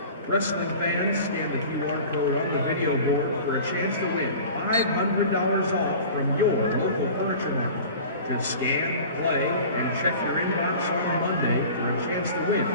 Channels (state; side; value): inverted; both; correlation -0.40